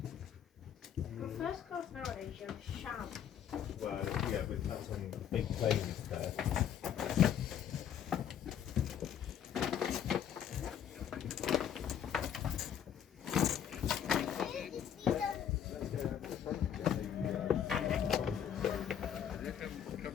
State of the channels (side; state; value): right; quieter; 9.2 dB